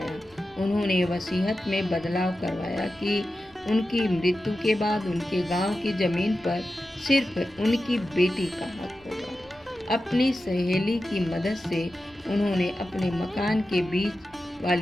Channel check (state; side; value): noise; left; rumble, 30 dB below the sound